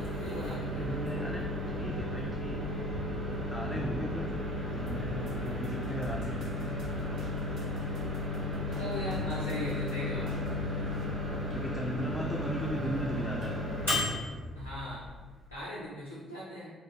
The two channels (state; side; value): normal; both; correlation 0.34